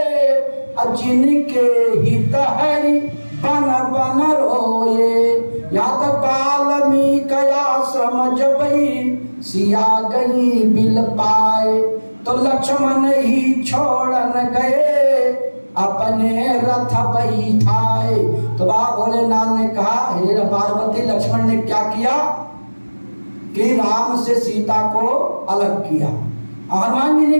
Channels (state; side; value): inverted; both; correlation -1.00